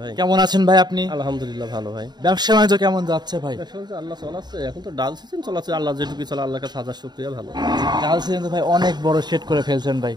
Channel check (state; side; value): late; left; 0.20 ms